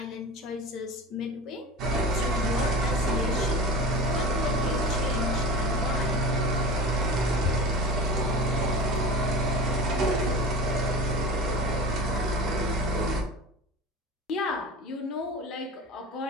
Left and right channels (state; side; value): normal; both; correlation 0.34